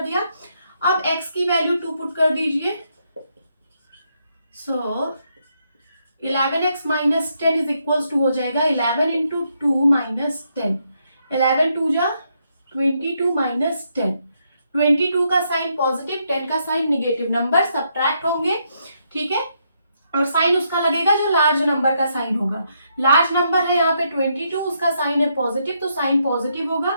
दिया। अब x की वैल्यू 2 पुट कर दीजिए, so 11x minus 10 is equals to हो जाएगा 11 इंटू 2 माइनस 10, 11 2 जा 22 माइनस 10। 22 का साइन पॉजिटिव, 10 का साइन निगेटिव, नंबर सब्ट्रैक्ट होंगे। ठीक है, और साइन उसका लगेगा जो लार्ज नंबर का साइन होगा। लार्ज नंबर है यहाँ पे 22, उसका साइन है पॉजिटिव, तो साइन पॉजिटिव होगा।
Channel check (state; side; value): inverted; both; correlation -0.77